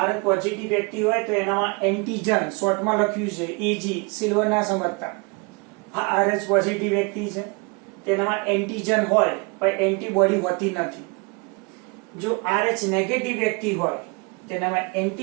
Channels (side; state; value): left; quieter; 30.6 dB